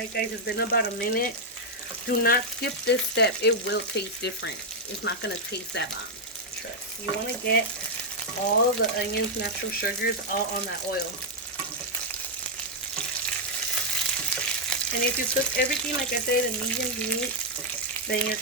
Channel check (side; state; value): both; normal; correlation -0.01